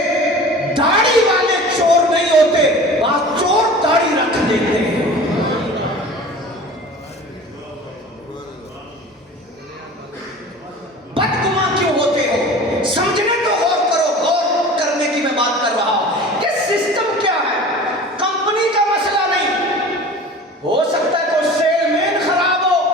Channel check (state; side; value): normal; both; correlation 0.39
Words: داڑھی والے چور نہیں ہوتے، بعض چور داڑھی رکھ دیتے ہیں.